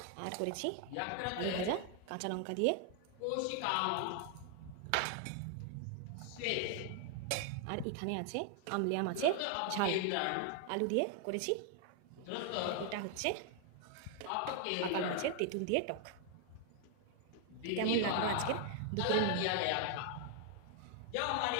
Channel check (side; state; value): both; different; correlation 0.00